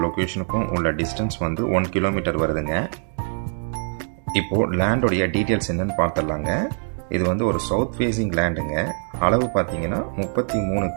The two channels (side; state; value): left; silent; digital silence